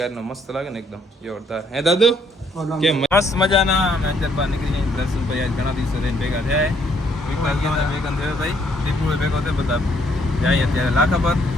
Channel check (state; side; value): normal; both; correlation 0.68